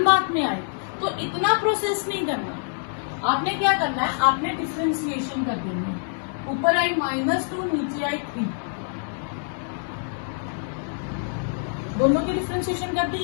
मार्क में आए, तो इतना प्रोसेस नहीं करना। आपने क्या करना है, आपने डिफरेंशिएशन कर देनी है। ऊपर आई -2, नीचे आई 3, दोनों की डिफरेंशिएशन कर दी।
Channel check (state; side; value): silent; right; digital silence